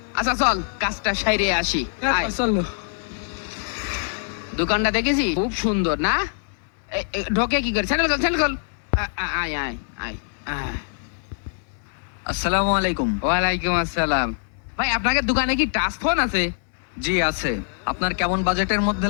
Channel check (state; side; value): silent; right; digital silence